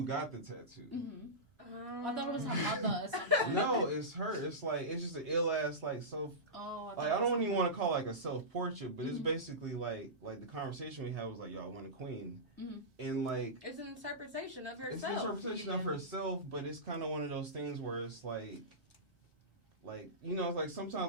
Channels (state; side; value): normal; both; correlation -0.17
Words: got the tattoo. Mm-hmm. I thought it was her mother or something. No, it's her. It's like, it's just an ill ass like self. Oh, Like, I don't even want to call it like a self portrait, but it's basically like the conversation we had was like, yo, I want a queen, and like It's an interpretation of it's an herself. interpretation of herself, but it's kind of one of those things where it's like you know, like